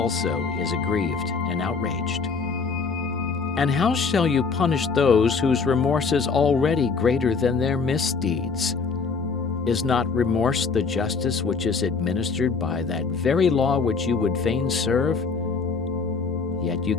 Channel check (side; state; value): right; quieter; 4.9 dB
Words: is aggrieved and outraged? And how shall you punish those whose remorse is already greater than their misdeeds? Is not remorse the justice which is administered by that very law which you would fain serve? Yet you